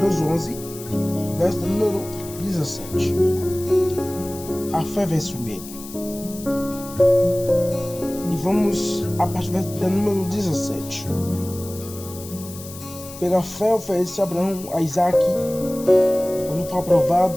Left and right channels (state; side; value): noise; left; hiss, 15 dB below the sound